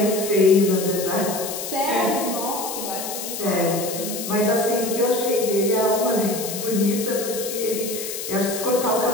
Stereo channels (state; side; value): noise; left; hiss, 7 dB below the sound